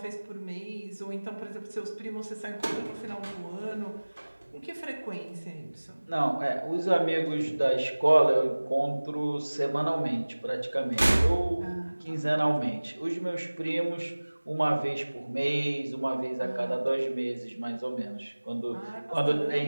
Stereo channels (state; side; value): inverted; both; correlation -1.00